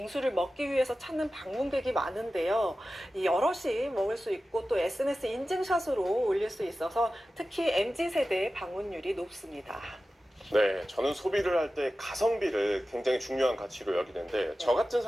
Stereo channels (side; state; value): both; normal; correlation 0.94